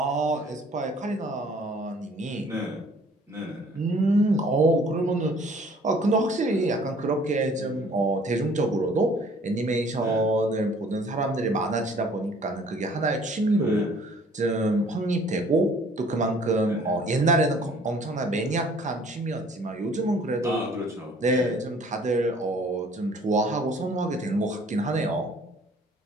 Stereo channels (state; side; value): normal; both; correlation 0.55